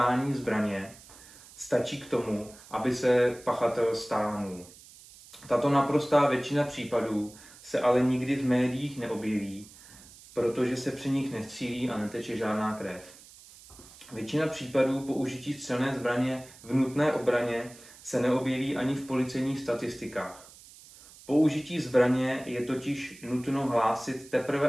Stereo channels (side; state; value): right; noise; hiss, 21 dB below the sound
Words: zbraně stačí k tomu, aby se pachatel stáhnul. Tato naprostá většina případů se ale nikdy v médiích neobjeví, protože se při nich nestřílí a neteče žádná krev. Většina případů použití střelné zbraně v nutné obraně se neobjeví ani v policejních statistikách. Použití zbraně je totiž nutno hlásit